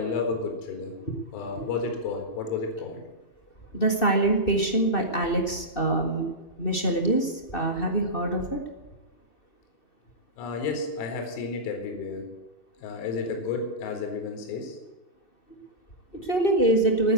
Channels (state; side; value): late; right; 2.6 ms